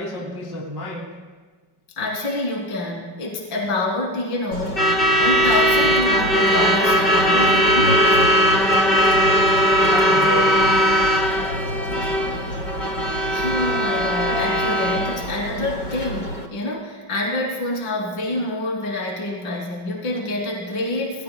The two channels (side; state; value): right; late; 5.2 ms